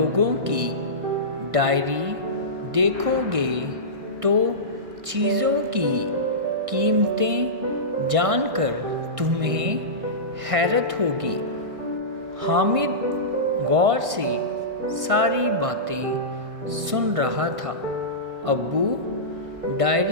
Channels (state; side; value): late; left; 1.5 ms